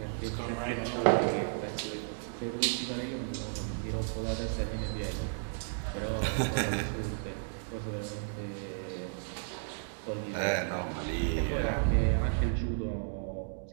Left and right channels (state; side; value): silent; left; digital silence